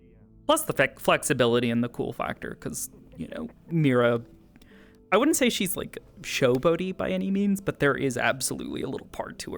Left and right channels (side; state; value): both; identical; correlation 1.00